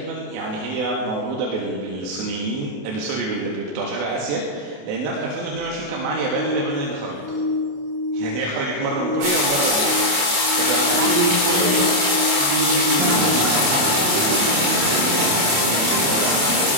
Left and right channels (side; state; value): left; late; 28 ms